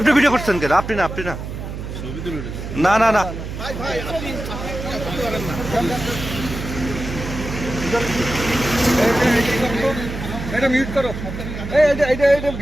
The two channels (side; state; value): right; noise; hum, 8 dB below the sound